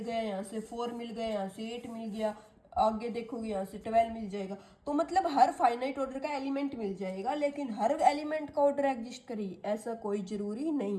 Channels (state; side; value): identical; both; correlation 1.00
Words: यहाँ से 4 मिल गया, यहाँ से 8 मिल गया, आगे देखोगे यहाँ से 12 मिल जाएगा। तो मतलब हर फाइनाइट ऑर्डर का एलिमेंट मिल जाएगा, लेकिन हर एलिमेंट का ऑर्डर एग्जिस्ट करे ऐसा कोई जरूरी